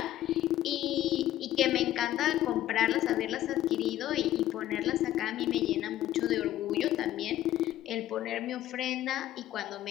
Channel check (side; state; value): right; quieter; 13.4 dB